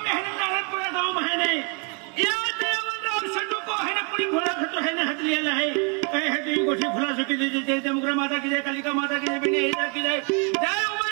मेहनत नारायणपुरा गांव में है नहीं या देवराव संडू को है ना पूरी घोड़ा खतो है ना हट लिया है कहे है तो गोठी खुला सके जय जय जमुग्रा माता की जय कालिका माता की जय बिने हीरा की जय जय उमा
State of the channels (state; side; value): quieter; left; 34.6 dB